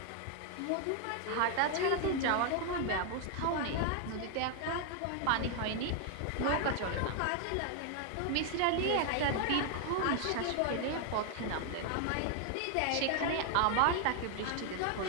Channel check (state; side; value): different; both; correlation 0.00